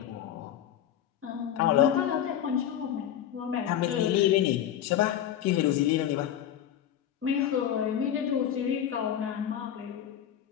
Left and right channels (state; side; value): quieter; right; 10.5 dB